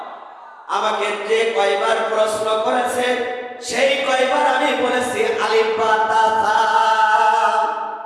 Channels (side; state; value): both; identical; correlation 1.00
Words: আমাকে যে কয়বার প্রশ্ন করেছে সেই কয়বার আমি বলেছি আলিফ বা তা সা।